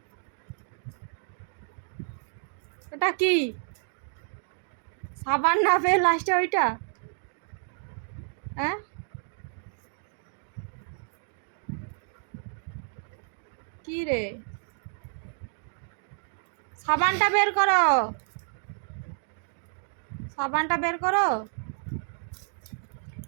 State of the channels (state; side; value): silent; left; 58 dB below the other